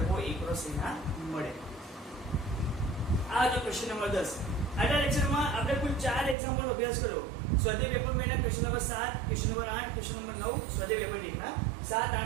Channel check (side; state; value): left; drops out; at 6.4 s